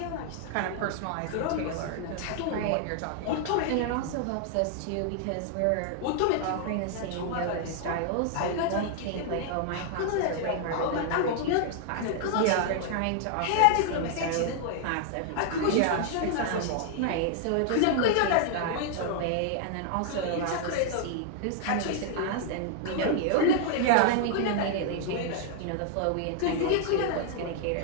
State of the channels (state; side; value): different; both; correlation -0.01